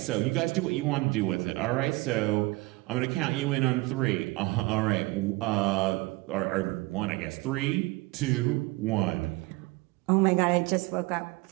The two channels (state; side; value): quieter; left; 22.9 dB